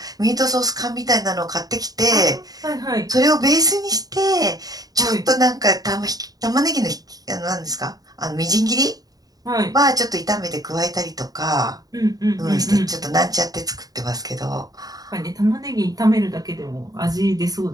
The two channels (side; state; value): left; late; 0.18 ms